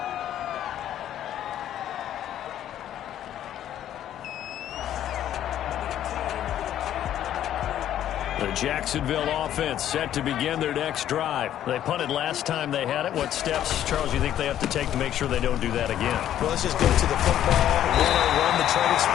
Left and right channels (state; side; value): quieter; right; 11.3 dB